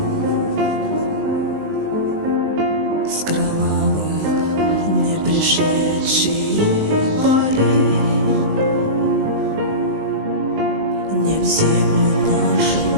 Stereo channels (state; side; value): late; left; 19 ms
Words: с кровавых не пришедшие полей не в землю нашу